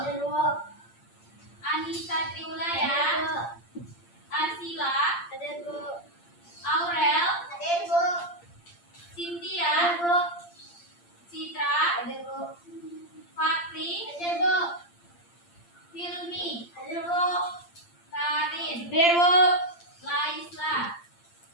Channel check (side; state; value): right; late; 8.7 ms